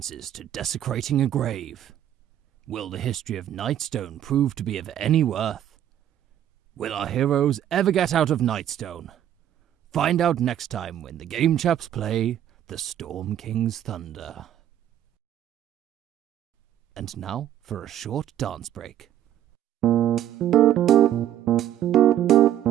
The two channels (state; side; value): quieter; left; 11.3 dB